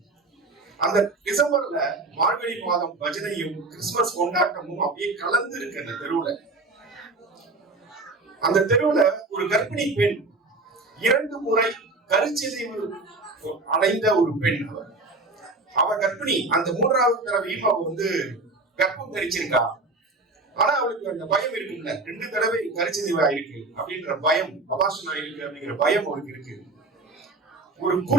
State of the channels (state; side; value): quieter; left; 3.3 dB